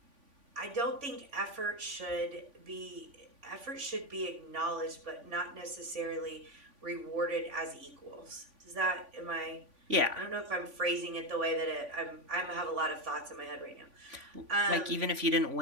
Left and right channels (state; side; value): late; left; 3.5 ms